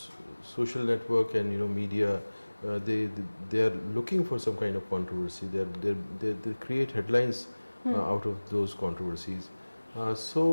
social network and media they are looking for some kind of controversy. They create headlines out of those controversies.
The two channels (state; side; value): inverted; both; correlation -1.00